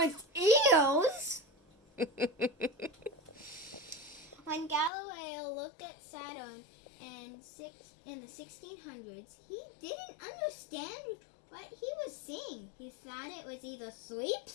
eels? When Galileo looked at Saturn in the 1600s, he didn't understand what he was seeing. He thought it was either 3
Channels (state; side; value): drops out; right; at 4.9 s